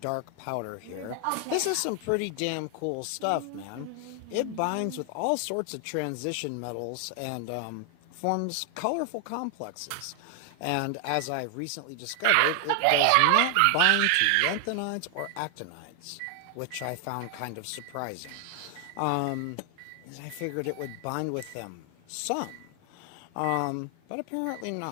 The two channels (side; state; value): both; different; correlation 0.00